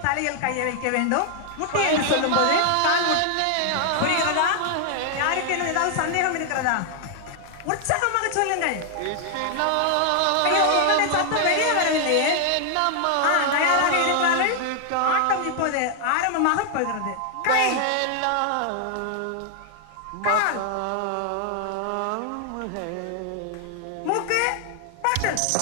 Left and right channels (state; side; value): different; both; correlation 0.00